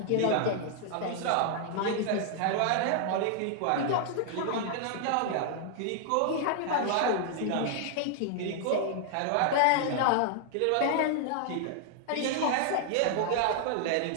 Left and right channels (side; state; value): both; different; correlation 0.00